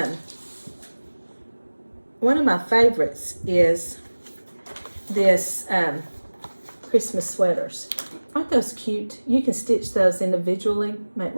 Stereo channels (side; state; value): both; inverted; correlation -1.00